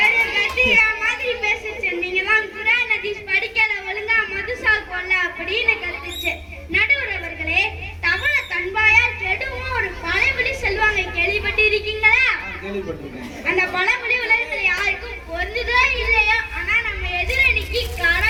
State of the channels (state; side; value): identical; both; correlation 1.00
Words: கத்திரிக்காய் மாதிரி பேசிச்சு. நீங்க தான் குர்ஆன் ஹதீஸ் படிக்கல, ஒழுங்கா மதுசா கொல்ல அப்படின்னு கத்துச்சு. நடுவர் அவர்களே, தவளை தன்பாயால் கெடுவும் ஒரு பழமொழி சொல்லுவாங்க, கேள்விப்பட்டு இருக்கீங்களா? அந்த பழமொழி உலகத்துல யாருக்கும் பொருந்ததோ இல்லையோ, ஆனா நம்ம எதிரணிக்கு